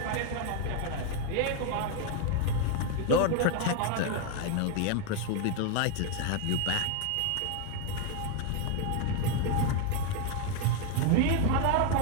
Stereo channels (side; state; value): both; different; correlation 0.01